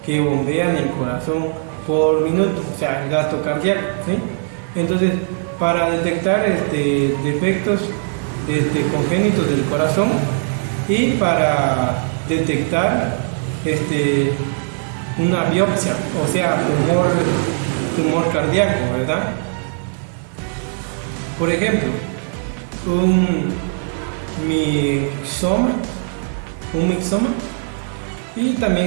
que bombea en el corazón por minuto, o sea, el gasto cardíaco, ¿sí? Entonces, para detectar defectos congénitos del corazón y para detectar una biopsia, o sea, tumor cardíaco, ¿verdad? Por ejemplo, un mixoma, y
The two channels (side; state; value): left; silent; 65 dB below the other